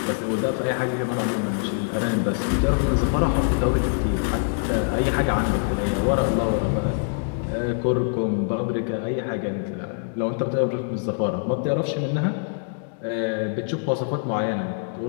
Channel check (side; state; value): right; silent; digital silence